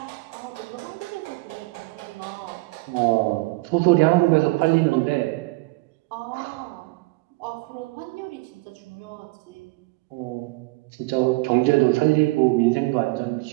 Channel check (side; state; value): left; quieter; 23.7 dB